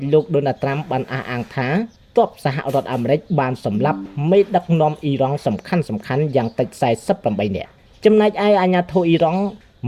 លោកដូណាល់ត្រាំបានអះអាងថាទ័ពសហរដ្ឋអាមេរិកបានសម្លាប់មេដឹកនាំអ៊ីរ៉ង់សំខាន់យ៉ាងតិច48នាក់ចំណែកឯអាជ្ញាធរអ៊ីរ៉ង់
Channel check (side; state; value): both; identical; correlation 1.00